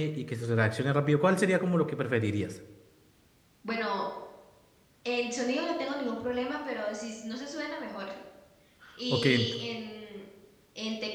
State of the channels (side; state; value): both; identical; correlation 1.00